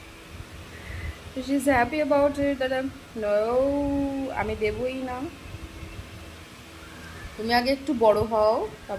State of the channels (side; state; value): both; identical; correlation 1.00